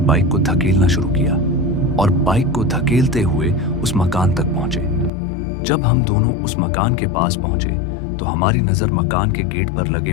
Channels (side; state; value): right; drops out; at 5.1 s